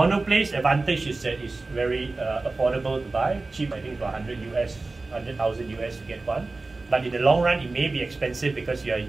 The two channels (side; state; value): left; quieter; 3.4 dB